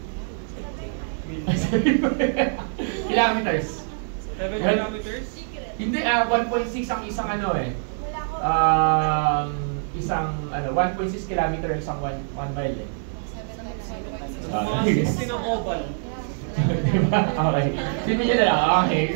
Kilometers. 7 kilometers? Hindi, 1.6 ang isang ano eh. Isang 1.6 kilometer isang 1 mile eh. Mga 16 ang oval. Diba? Okay. Sino nyo na lang? Okay.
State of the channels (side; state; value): left; silent; 58 dB below the other